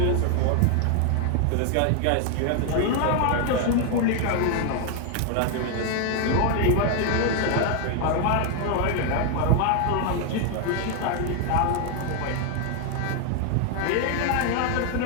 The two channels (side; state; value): both; different; correlation 0.00